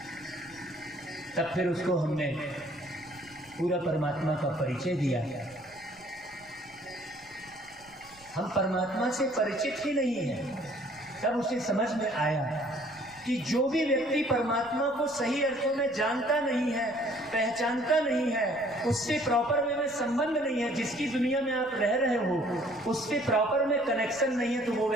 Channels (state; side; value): noise; right; rumble, 27 dB below the sound